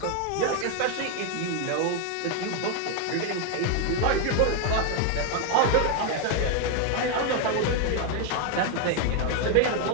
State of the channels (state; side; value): different; both; correlation 0.01